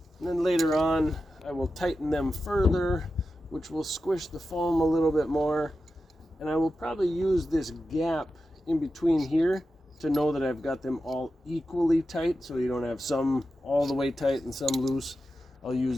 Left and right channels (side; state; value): both; normal; correlation 0.91